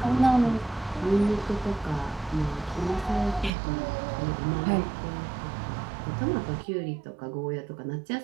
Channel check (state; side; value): drops out; left; at 3.5 s